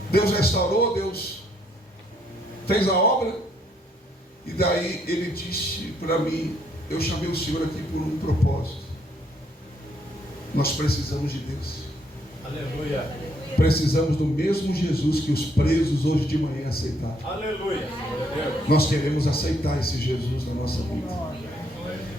Deus restaurou, Deus fez a obra. E daí ele disse para mim, eu chamei o Senhor aqui por um propósito. Nós precisamos de Deus. Aleluia. Precisamos do mesmo Jesus que os presos hoje de manhã aceitaram. Aleluia. Nós queremos aceitar esse Jesus na nossa vida.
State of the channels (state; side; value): normal; both; correlation 0.71